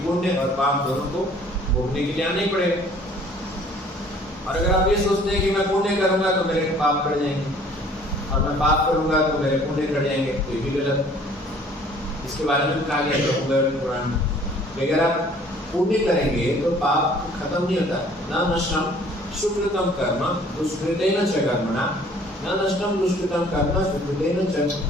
पुण्य और पाप दोनों को भोगने के लिए आना ही पड़ेगा। और अगर आप ये सोचते हैं कि मैं पुण्य करूंगा तो मेरे पाप बढ़ जाएंगे, और मैं पाप करूंगा तो मेरे पुण्य बढ़ जाएंगे, तो ये भी गलत। इसके बारे में कहा गया है पुराण में, अगर आप पुण्य करेंगे तो पाप खत्म नहीं होता। न नष्टम सुकृतम कर्म दुष्कृतेन च कर्मणा, न नष्टम दुष्कृतम कर्म सुकृतेन च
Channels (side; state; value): both; normal; correlation 0.54